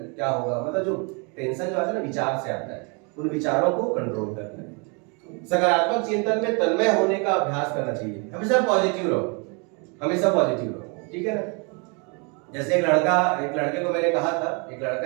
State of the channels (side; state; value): left; quieter; 33.6 dB